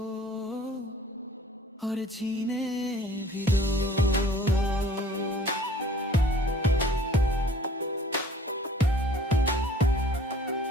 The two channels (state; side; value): normal; both; correlation 0.52